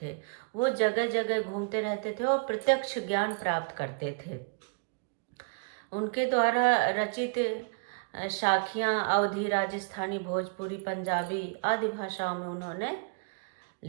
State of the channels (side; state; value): left; quieter; 35.9 dB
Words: वो जगह जगह घूमते रहते थे और प्रत्यक्ष ज्ञान प्राप्त करते थे। उनके द्वारा रचित साखियाँ अवधी, राजस्थानी, भोजपुरी, पंजाबी आदि भाषाओं में उन्होंने